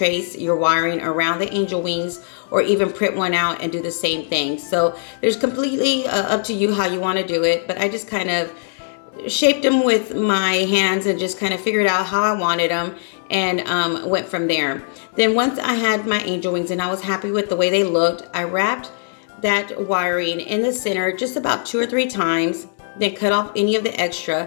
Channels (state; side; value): silent; right; digital silence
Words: your wiring around the angel wings, or even print one out and do the same thing. So there's completely up to you how you want to do it, but I just kind of shaped them with my hands and just kind of figured out how I wanted them, and went from there. Then once I had my angel wings and I was happy with the way they looked, I wrapped that wiring in the center just about 2 or 3 times, then cut off any of the